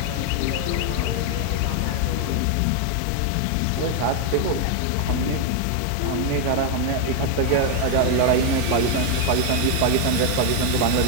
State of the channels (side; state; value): both; different; correlation 0.01